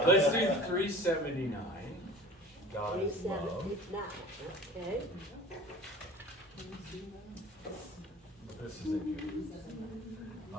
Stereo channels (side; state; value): both; normal; correlation 0.41